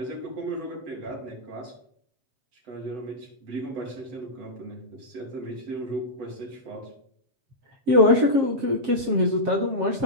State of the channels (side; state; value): left; late; 7.4 ms